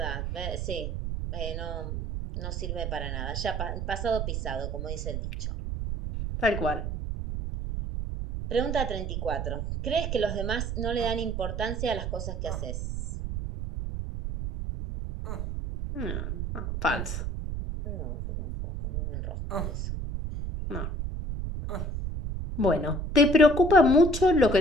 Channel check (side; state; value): right; noise; rumble, 3 dB below the sound